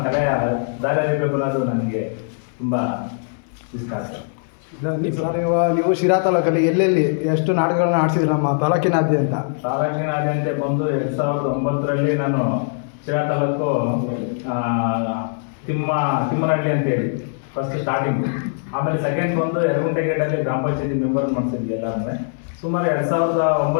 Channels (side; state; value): right; silent; 64 dB below the other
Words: ಕಲೆಯ ದಾರಿ ಅರಿಬೇಕು ಅನ್ನೋದು ನನಗೆ ತುಂಬ ಇಷ್ಟ ಆಗ್ತದೆ. ನೀವು ಶಿರಾ ತಾಲೂಕಲ್ಲಿ ಎಲ್ಲೆಲ್ಲಿ ಎಷ್ಟು ನಾಟಕಗಳನ್ನ ಆಡಿಸಿದ್ರಿ ನಮ್ಮ ತಾಲೂಕಿನಾದ್ಯಂತ? ತಾಲೂಕಿನಾದ್ಯಂತ ಬಂದು 2009ರಲ್ಲಿ ನಾನು ಶಿರಾ ತಾಲೂಕು ತಿಮ್ಮನಹಳ್ಳಿ ಅಂತೇಳಿ ಫಸ್ಟ್ ಸ್ಟಾರ್ಟಿಂಗ್. ಆಮೇಲೆ ಸೆಕೆಂಡ್ ಬಂದು ಯರಗುಂಟೆಗೇಟಲ್ಲಿ ಗ್ರಾಮ ಪಂಚಾಯತಿ ಮೆಂಬರ್ ಮಾಡಿಸಿದ್ವಿ ಎಲ್ಲರೂ. ಸುಮಾರು